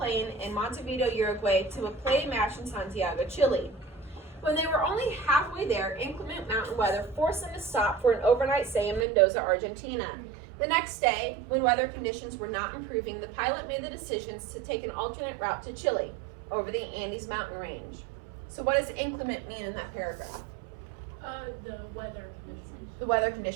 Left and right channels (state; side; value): drops out; left; at 9.1 s